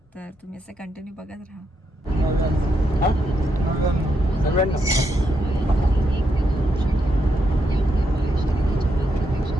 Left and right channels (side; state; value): both; normal; correlation 0.80